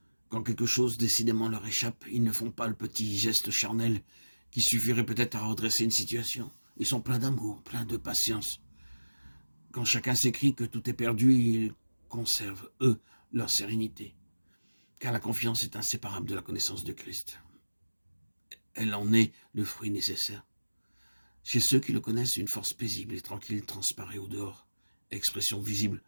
Quand quelque chose décidément leur échappe, ils ne font pas le petit geste charnel qui suffirait peut-être à redresser une situation. Ils sont pleins d'amour, pleins de patience. Quand chacun s'écrie que tout est perdu, ils conservent, eux, leur sérénité. Car la confiance est inséparable de la connaissance de Christ. Elle en est le fruit nécessaire. Chez ceux qui le connaissent, une force paisible et tranquille transparaît au dehors, expression visible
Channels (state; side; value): inverted; both; correlation -1.00